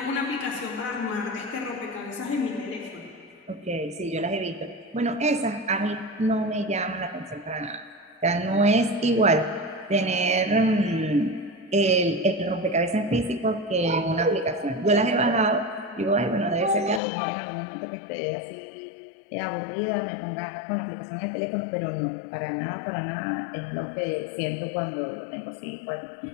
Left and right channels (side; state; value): right; drops out; at 17.0 s